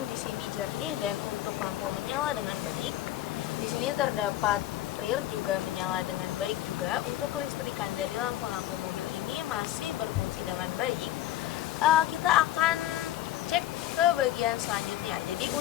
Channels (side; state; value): right; quieter; 13.6 dB